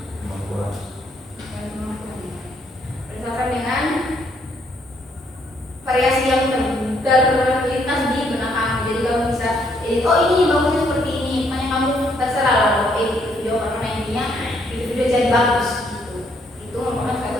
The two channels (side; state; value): both; normal; correlation 0.70